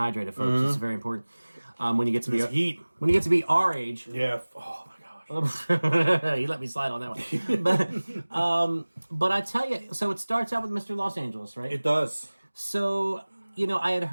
folks. It's very important. When you get to be heat, when you get to be our age, yeah. Oh my gosh. You let me slide on that one. But I tell you, so it starts out with Mr. Los Angeles, right? It does. So, I had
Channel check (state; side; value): inverted; both; correlation -1.00